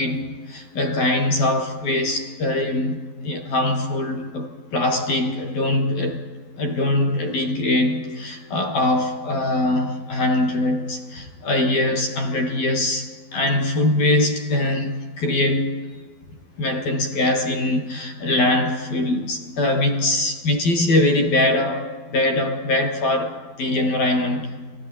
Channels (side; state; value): right; late; 12 ms